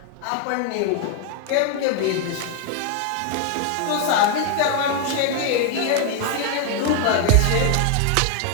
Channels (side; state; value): both; different; correlation 0.01